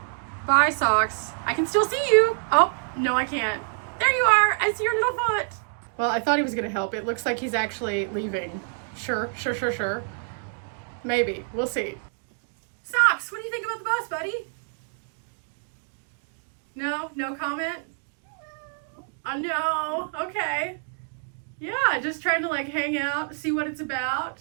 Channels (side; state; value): left; silent; 60 dB below the other